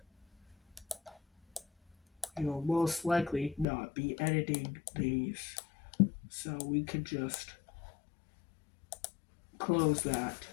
You will most likely not be editing these, so we can just close that.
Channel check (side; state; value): right; drops out; at 3.7 s